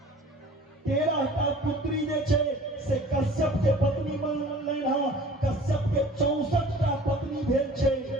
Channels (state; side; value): normal; both; correlation 0.47